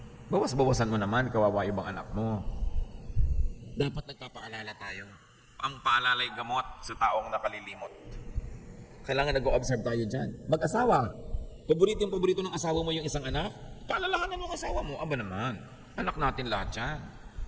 Bawas-bawasan mo naman, kawawa ibang anak mo. Dapat nagpapaalala tayo. Ang paalalay gamot sa taong nakalilimot. Kailangan nag-o-observe tayo dyan. Mag-asawa. Paborito ng asawa mo yung isang anak? Paalalahanan mo ang asawa mo. Aba naman, anak natin lahat yan.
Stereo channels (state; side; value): identical; both; correlation 1.00